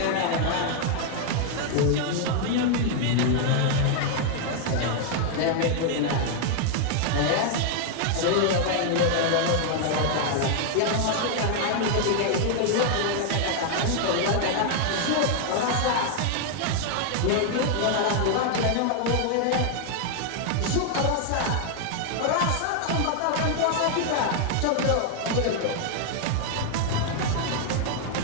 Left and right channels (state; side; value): different; both; correlation 0.00